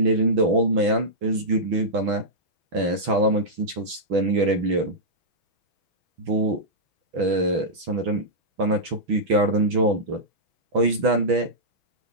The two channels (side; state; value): left; late; 6.1 ms